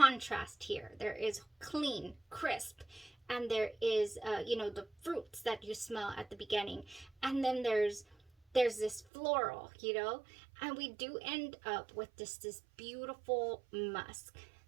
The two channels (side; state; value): left; drops out; at 9.1 s